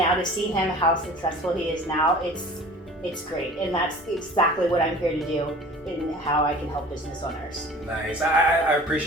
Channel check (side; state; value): both; normal; correlation 0.44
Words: to see him how successful he is now, it's great. And that's exactly what I'm here to do and how I can help business owners. Nice. I